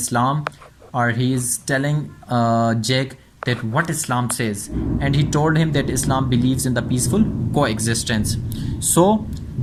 or he is telling Jake that what Islam says, and he told him that Islam believes in the peaceful coexistence. So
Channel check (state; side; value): identical; both; correlation 1.00